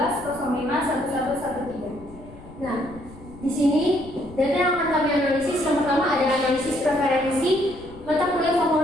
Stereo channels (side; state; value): left; noise; rumble, 19 dB below the sound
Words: Nah, di sini data yang akan kami analisis yang pertama adalah analisis preferensi mata kuliah